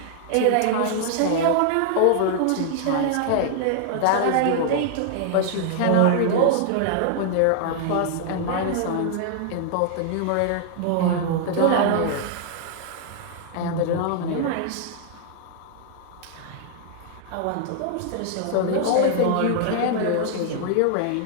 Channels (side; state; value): both; different; correlation -0.01